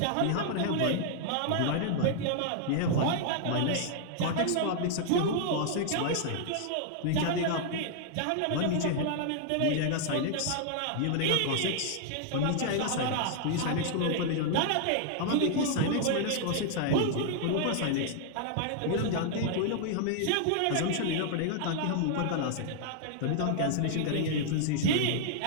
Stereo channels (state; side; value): different; both; correlation 0.00